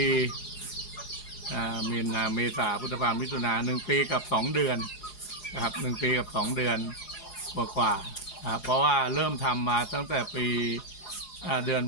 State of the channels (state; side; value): late; right; 4.8 ms